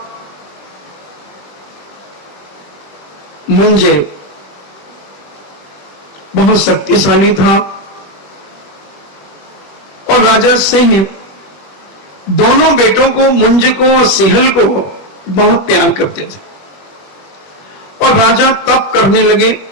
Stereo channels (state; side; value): late; right; 21 ms